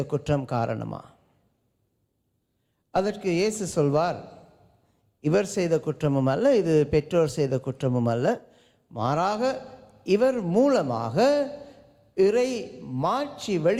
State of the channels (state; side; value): identical; both; correlation 1.00